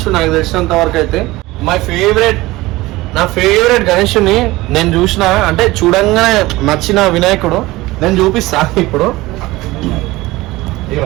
నాకు తెలిసినంత వరకు అయితే. నా ఫేవరెట్ గణేషుని నేను చూసిన, అంటే చూడంగానే నచ్చిన వినాయకుడు నేను చూపిస్తా ఇప్పుడు.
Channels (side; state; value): left; quieter; 19.4 dB